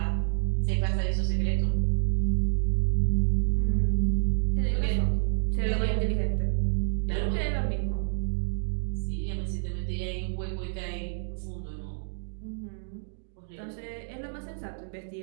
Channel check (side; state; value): left; silent; digital silence